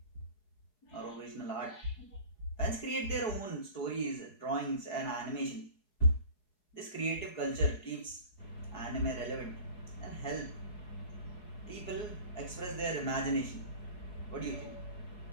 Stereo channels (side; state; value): right; late; 4.7 ms